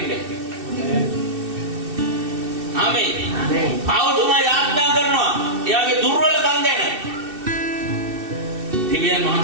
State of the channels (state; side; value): late; left; 2.6 ms